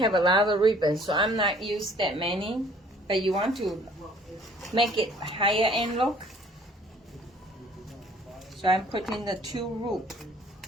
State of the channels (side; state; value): both; normal; correlation 0.56